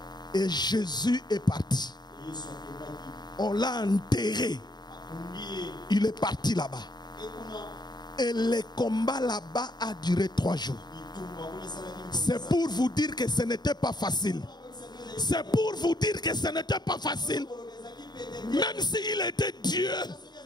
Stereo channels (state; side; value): late; right; 0.20 ms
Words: Et Jésus est parti. On l'a enterré. Il est parti là-bas. Et le combat là-bas a duré 3 jours. C'est pour vous dire que ce n'était pas facile. C'est pour vous dire que ce n'était pas facile. Même s'il était Dieu.